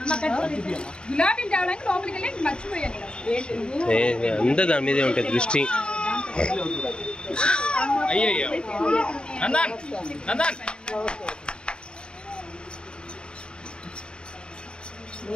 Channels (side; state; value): right; late; 0.052 ms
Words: గులాబీలు తేవడానికి లోపలికి వెళ్ళి మర్చిపోయాను. అంతా దాని మీదే ఉంటుంది దృష్టి. అయ్యయ్యో నందన్ నందన్.